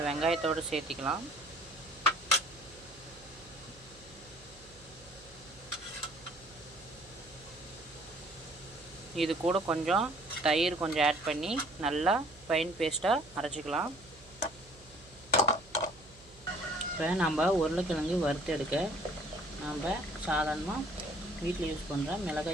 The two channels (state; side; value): noise; right; hum, 23 dB below the sound